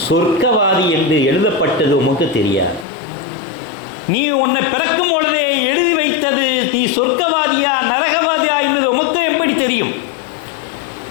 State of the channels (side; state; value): right; drops out; at 2.9 s